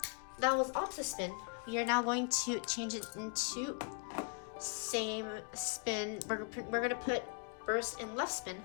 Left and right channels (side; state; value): right; quieter; 36.3 dB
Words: that was Optispin. We are now going to change it into same spin. We're gonna put Burst in left spin.